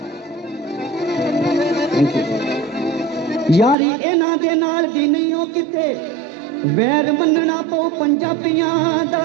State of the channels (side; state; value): left; drops out; at 3.8 s